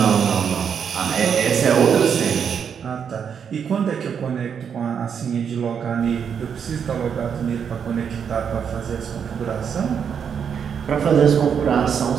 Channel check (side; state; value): left; quieter; 7.3 dB